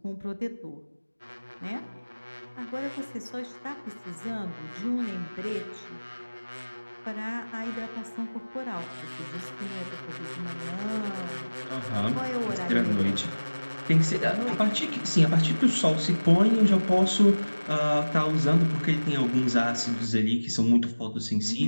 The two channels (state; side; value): inverted; both; correlation -1.00